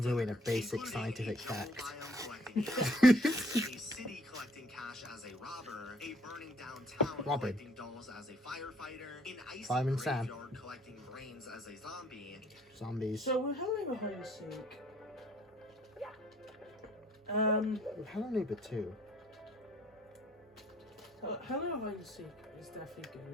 a basic scientific fact. A city collecting cash as a robber, a burning downtown Robin. collecting dolls as a firefighter, an icy Fireman Sam. graveyard collecting brains as a zombie. Zombies. So we're having a hide and seek. Hello Neighbor 2. Hello hide and seek is definitely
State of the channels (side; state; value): both; normal; correlation 0.60